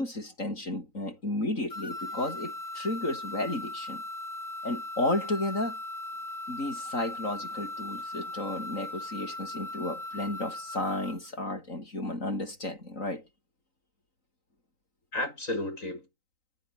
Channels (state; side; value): late; right; 3.9 ms